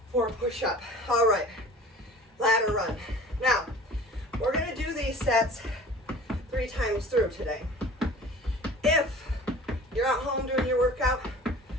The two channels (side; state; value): both; normal; correlation 0.43